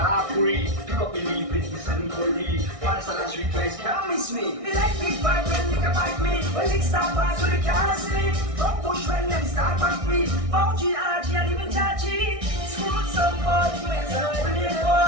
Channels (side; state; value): left; late; 1.6 ms